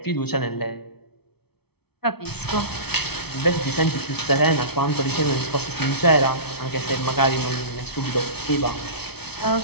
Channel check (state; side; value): late; right; 0.97 ms